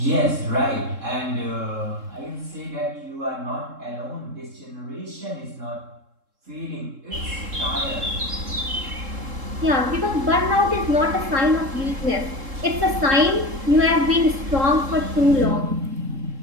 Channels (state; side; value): late; left; 3.7 ms